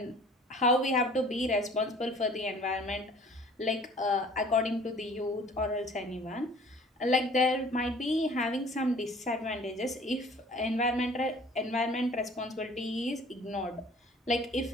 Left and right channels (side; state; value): both; normal; correlation 0.50